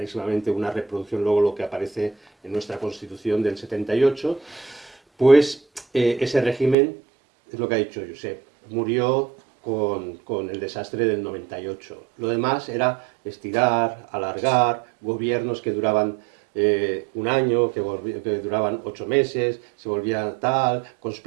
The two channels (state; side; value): drops out; left; at 6.8 s